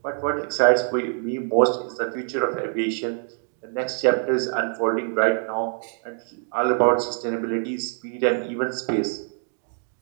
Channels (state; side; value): silent; left; 59 dB below the other